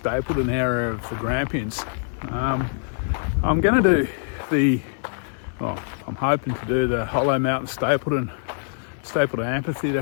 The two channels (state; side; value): silent; right; 63 dB below the other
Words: area of the Grampians. I'm going to do I'm hoping to do the Hollow Mountain Stapylton